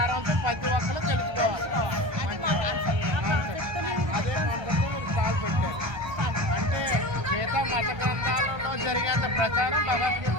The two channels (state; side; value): late; left; 1.3 ms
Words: ప్రతి ఒక్కరు తెలుసుకోవాలి. అదే మనతో కాల్ పెట్టారు. అంటే గీత మత గ్రంథాలలో జరిగేంత ప్రచారం